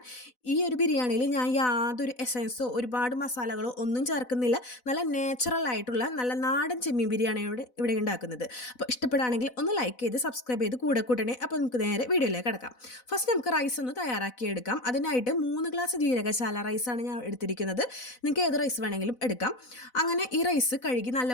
ഈ ഒരു ബിരിയാണിയിൽ ഞാൻ യാതൊരു എസൻസോ ഒരുപാട് മസാലകളോ ഒന്നും ചേർക്കുന്നില്ല. നല്ല നാച്ചുറൽ ആയിട്ടുള്ള നല്ല നാടൻ ചെമ്മീൻ ബിരിയാണിയോട് ഇവിടെ ഉണ്ടാക്കുന്നത്. അപ്പോൾ ഇഷ്ടപ്പെടുകയാണെങ്കിൽ ഒന്ന് ലൈക്ക് ചെയ്ത് സബ്സ്ക്രൈബ് ചെയ്ത് കൂടെ കൂട്ടണേ. അപ്പോൾ നമുക്ക് നേരെ വീഡിയോയിലേക്ക് കിടക്കാം. ഫസ്റ്റ് നമുക്ക് റൈസ് ഒന്ന് തയ്യാറാക്കിയെടുക്കാം. അതിനായിട്ട് 3 ഗ്ലാസ് ജീരകശാല റൈസാണ് ഞാൻ എടുത്തിരിക്കുന്നത്. നിങ്ങൾക്ക് ഏത് റൈസ് വേണമെങ്കിലും എടുക്കാം. അങ്ങനെ ഈ റൈസ് കഴുകി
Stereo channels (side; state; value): right; late; 4.0 ms